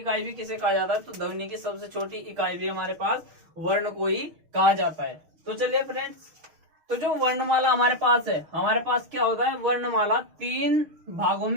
भी किसे कहा जाता है? तो ध्वनि की सबसे छोटी इकाई भी हमारे पास वर्ण को ही कहा जाता है। तो चलिए फ्रेंड्स, तो जो वर्णमाला हमारे पास है, हमारे पास क्या होता है, वर्णमाला 3 भागों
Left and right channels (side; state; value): left; late; 6.4 ms